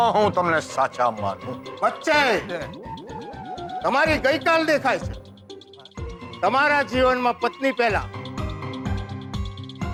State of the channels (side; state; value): both; identical; correlation 1.00